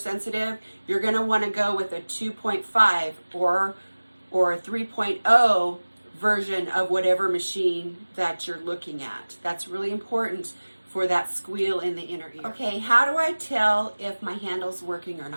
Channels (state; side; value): inverted; both; correlation -1.00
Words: You're going to want to go with a 2.5 or a 3.0 version of whatever machine that you're looking at. That's really important for that squeal in the inner ear. Okay, how do I tell if my handle's working or